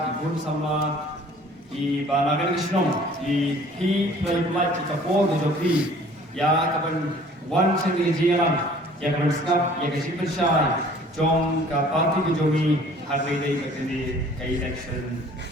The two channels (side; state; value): both; normal; correlation 0.52